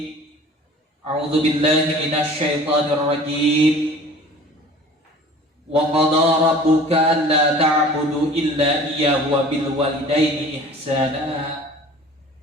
a'udzu billahi minasy syaithanir rajim. Wa qada rabbuka alla ta'budu illa iyyahu wa bil walidaini ihsana.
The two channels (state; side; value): normal; both; correlation 0.45